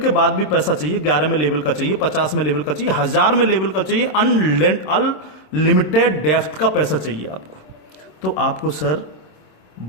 बाद भी पैसा चाहिए, 11 में लेवल का चाहिए, 50 में लेवल का चाहिए, 1000 में लेवल का चाहिए, अनलिमिटेड डेप्थ का पैसा चाहिए आपको, तो आपको सर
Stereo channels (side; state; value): right; late; 26 ms